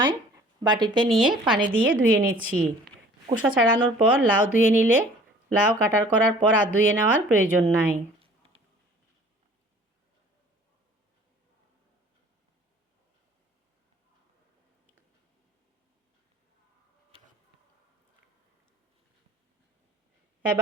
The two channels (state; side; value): normal; both; correlation 0.50